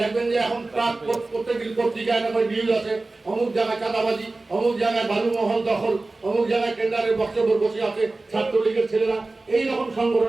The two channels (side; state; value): left; quieter; 3.2 dB